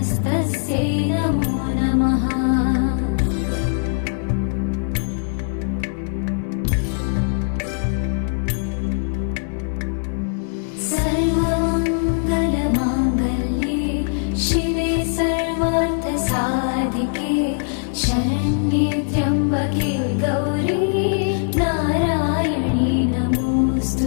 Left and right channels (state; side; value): silent; right; 65 dB below the other